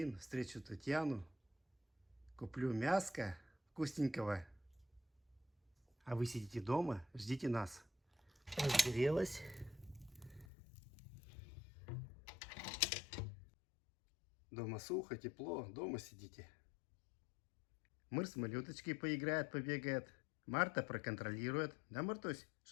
встречу Татьяну, куплю мяско вкусненького. А вы сидите дома, ждите нас. Разгорелась. Дома сухо, тепло, дома сидите. Мыр с малюточкой поиграет, побегает. Марта проконтролирует. Да, Мартусь?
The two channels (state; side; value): drops out; right; at 10.5 s